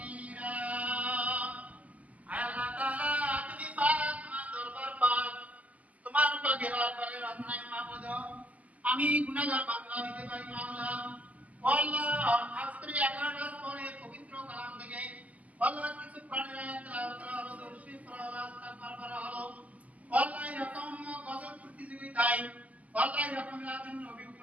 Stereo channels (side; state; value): left; late; 0.074 ms